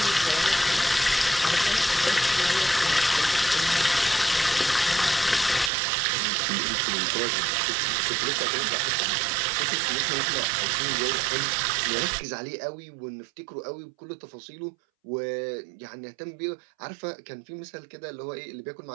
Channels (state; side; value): drops out; left; at 5.7 s